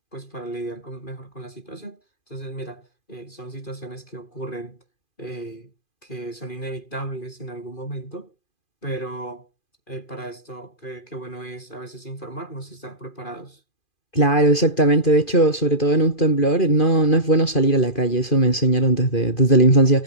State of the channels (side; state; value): right; late; 2.4 ms